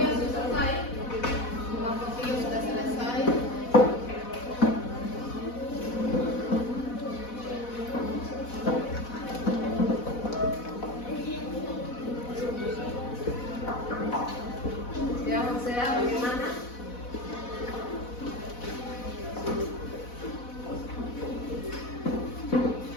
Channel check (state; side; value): late; right; 4.1 ms